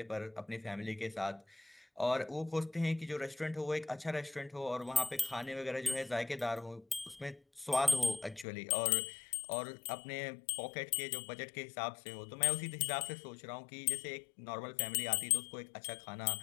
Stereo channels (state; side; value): drops out; right; at 8.5 s